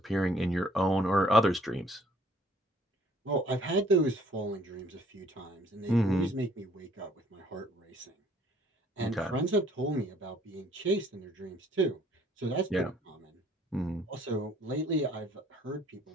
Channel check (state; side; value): normal; both; correlation 0.60